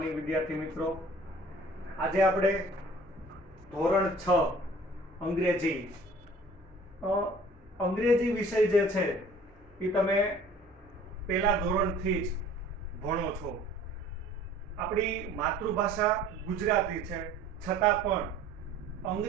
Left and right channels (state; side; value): normal; both; correlation 0.49